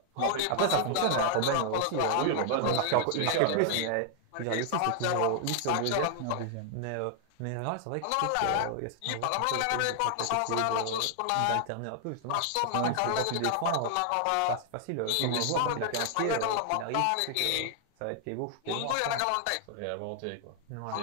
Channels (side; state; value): both; different; correlation 0.00